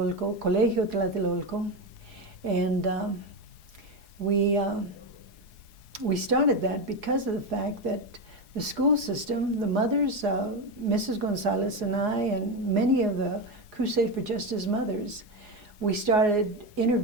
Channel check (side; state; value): left; late; 4.8 ms